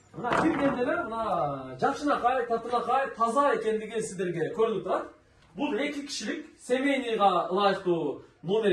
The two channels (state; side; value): identical; both; correlation 1.00